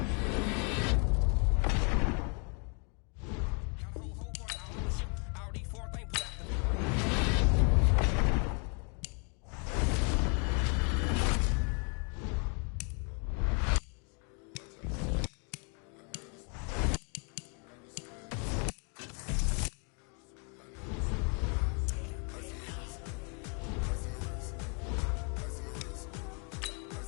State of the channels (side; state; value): right; quieter; 37.4 dB